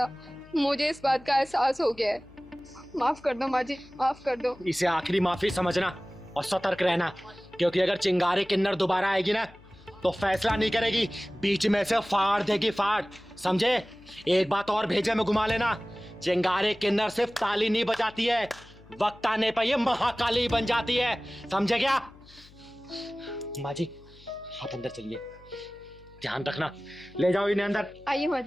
मुझे इस बात का एहसास हो गया है। माफ़ कर दो माँ जी, माफ़ कर दो। इसे आखिरी माफी समझना और सतर्क रहना, क्योंकि अगर चिंगारी किन्नर दोबारा आएगी ना, तो फैसला नहीं करेगी, बीच में से फाड़ देगी, फाड़। समझे? एक बात और भेजे में घुमा लेना, चिंगारी किन्नर सिर्फ ताली नहीं बजाती है, वक्त आने पर ये महाकाली बन जाती है। समझे क्या? माँ जी, आप अंदर चलिए, ध्यान रखना। ले जाओ इन्हें अंदर। आइए माँ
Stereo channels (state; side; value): noise; left; hum, 24 dB below the sound